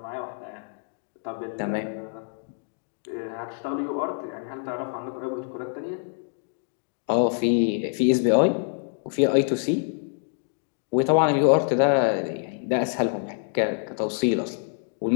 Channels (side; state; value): right; silent; 61 dB below the other